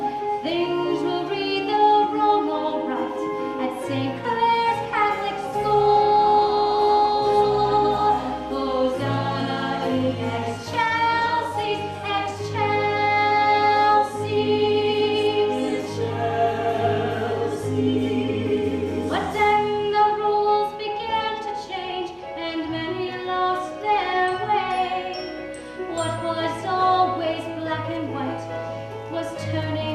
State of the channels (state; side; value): identical; both; correlation 1.00